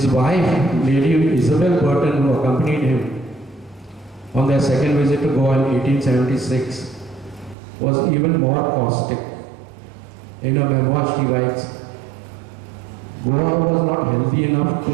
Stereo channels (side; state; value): left; drops out; at 7.6 s